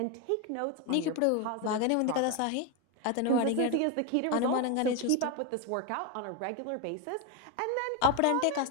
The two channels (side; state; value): both; different; correlation 0.02